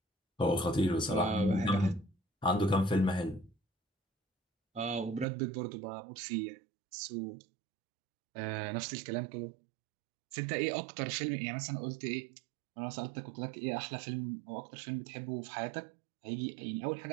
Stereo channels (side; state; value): left; drops out; at 5.2 s